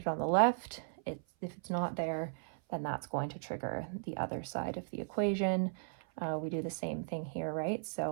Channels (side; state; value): left; silent; 53 dB below the other